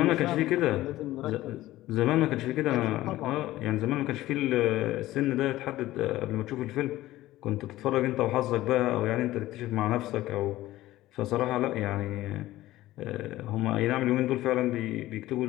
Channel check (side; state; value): right; quieter; 16.1 dB